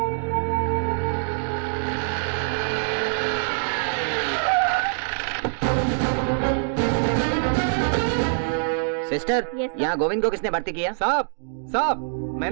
सिस्टर, यहाँ गोविंद को किसने भर्ती किया? साहब, साहब,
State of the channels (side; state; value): left; silent; digital silence